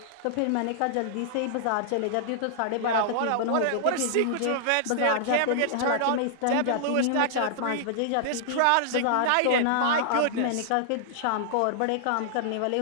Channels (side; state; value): both; different; correlation -0.01